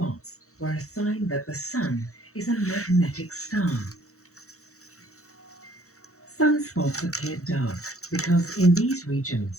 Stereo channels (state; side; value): late; right; 0.64 ms